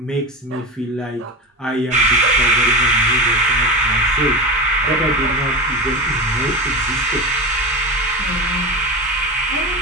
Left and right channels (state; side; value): normal; both; correlation 0.24